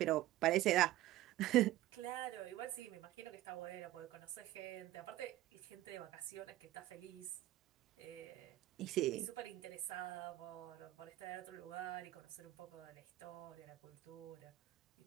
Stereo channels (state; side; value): quieter; left; 15.2 dB